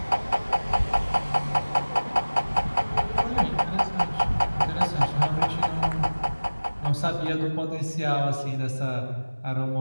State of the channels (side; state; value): both; inverted; correlation -1.00